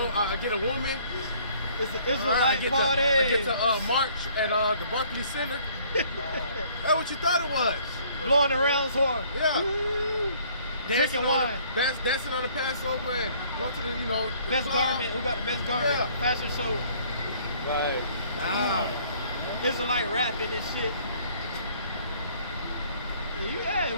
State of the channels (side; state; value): both; inverted; correlation -0.59